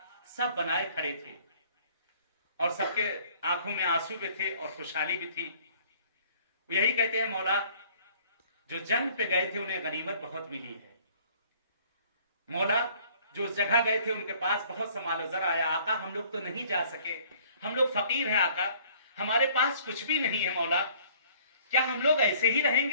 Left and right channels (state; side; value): inverted; both; correlation -0.56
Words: सब बनाए खड़े थे और सबके आंखों में आंसू भी थे और खुशहाली भी थी। यही कहते हैं मौला जो जंग पे गए थे उन्हें गनीमत बहुत मिली है, मौला जो उस जगह गए थे उनके पास बहुत सा मालो ज़र आया, आका हम लोग तो नहीं जा सके, हम लोग फकीर हैं आका, हमारे पास कुछ भी नहीं है मौला, क्या हम लोग ऐसे ही